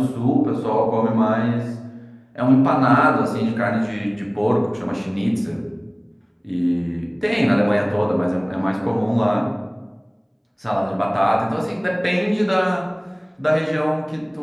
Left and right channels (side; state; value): both; identical; correlation 1.00